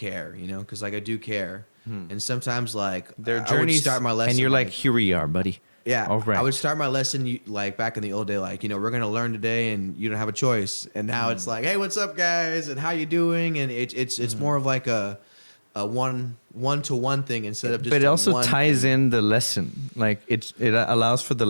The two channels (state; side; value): inverted; both; correlation -1.00